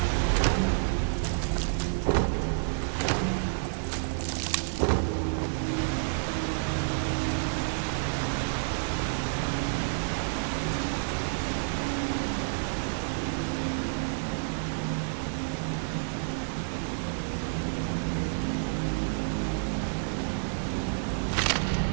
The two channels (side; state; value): left; silent; digital silence